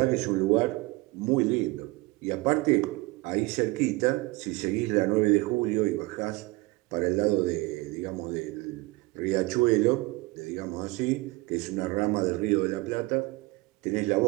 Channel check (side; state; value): left; quieter; 22.4 dB